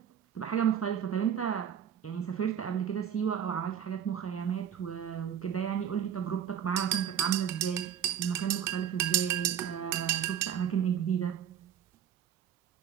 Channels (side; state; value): left; quieter; 9.0 dB